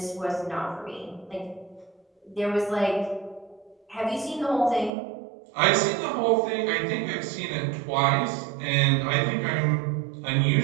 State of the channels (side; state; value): left; drops out; at 4.9 s